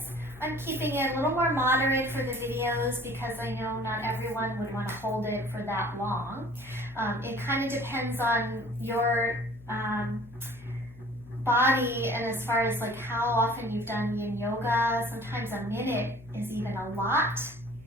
I'm keeping it a little more moderate for the videos because I know not everyone would want to hold it for that long. It kind of depends on your body and as far as like how often you've done yin yoga. Sometimes a minute is even a lot.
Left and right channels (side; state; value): left; noise; hum, 20 dB below the sound